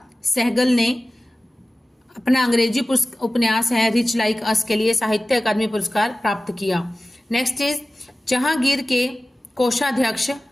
ने अपना अंग्रेजी उपन्यास है रिच लाइक अस के लिए साहित्य अकादमी पुरस्कार प्राप्त किया। नेक्स्ट इज जहांगीर के कोषाध्यक्ष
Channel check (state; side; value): normal; both; correlation 0.96